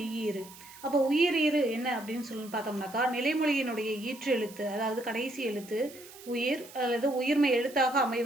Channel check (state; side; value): noise; right; hiss, 19 dB below the sound